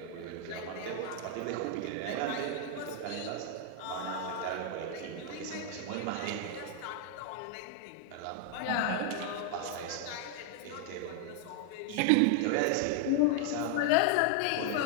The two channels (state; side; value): different; both; correlation 0.00